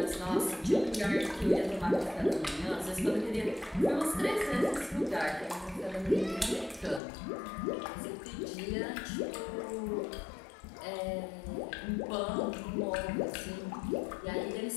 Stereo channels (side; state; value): right; drops out; at 7.0 s